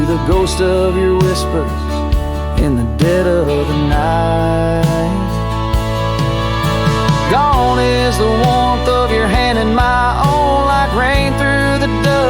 the ghost of your whispers in the dead of the night. Gone is the warmth of your hand in my own, like rain through the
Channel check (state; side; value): identical; both; correlation 1.00